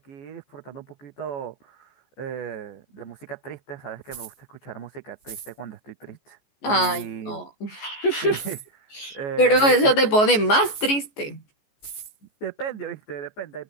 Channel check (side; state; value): right; late; 14 ms